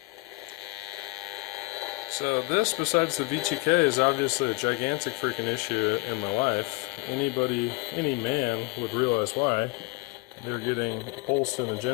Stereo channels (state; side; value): quieter; right; 25.8 dB